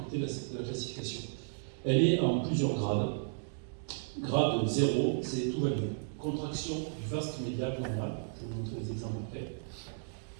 de la classification. Elle est en plusieurs grades. Grade 0, c'est tout va bien. Contraction du vaste médial normal, je vais vous montrer des exemples après.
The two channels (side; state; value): left; silent; digital silence